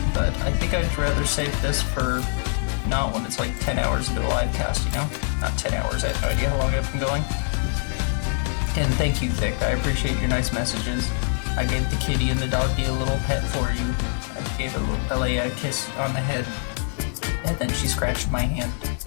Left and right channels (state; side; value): silent; right; 60 dB below the other